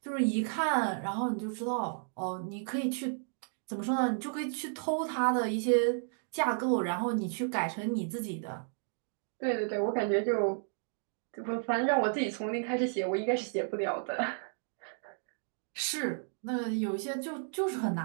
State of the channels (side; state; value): left; silent; digital silence